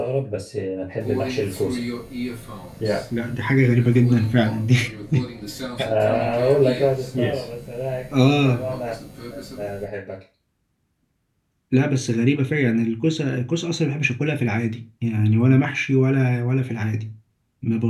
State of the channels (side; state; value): both; identical; correlation 1.00